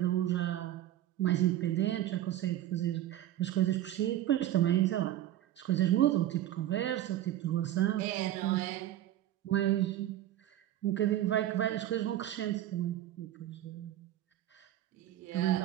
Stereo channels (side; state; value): left; quieter; 12.9 dB